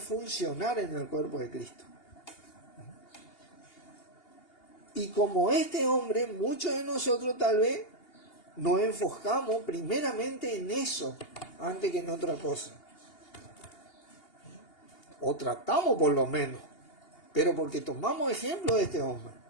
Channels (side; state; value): right; late; 2.8 ms